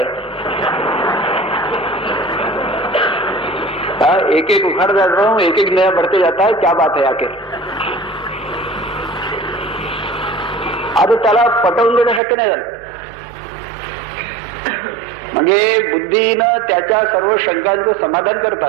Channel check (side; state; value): left; drops out; at 12.2 s